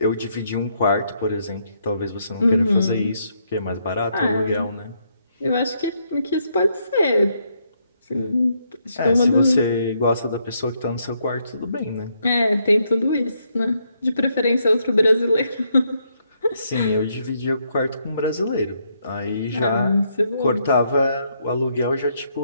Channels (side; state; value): both; inverted; correlation -0.75